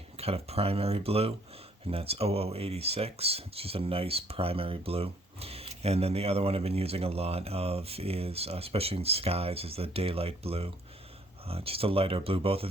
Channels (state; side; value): normal; both; correlation 0.63